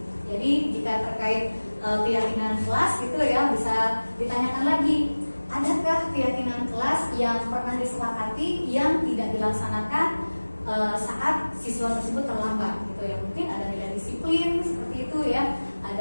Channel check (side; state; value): both; inverted; correlation -1.00